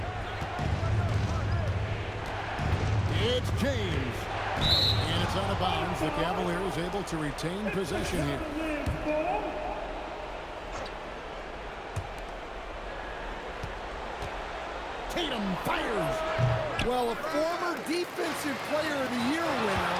It's James. And it's out of bounds. The Cavaliers able to retain possession here. Tatum fires. Well, a former Defensive Player of the Year winner,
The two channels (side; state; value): both; identical; correlation 1.00